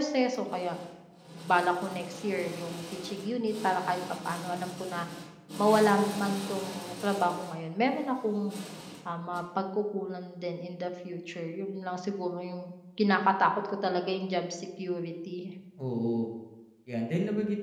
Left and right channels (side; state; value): both; identical; correlation 1.00